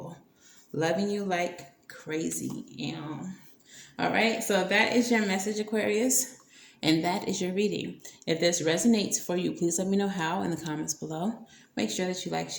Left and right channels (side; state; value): both; identical; correlation 1.00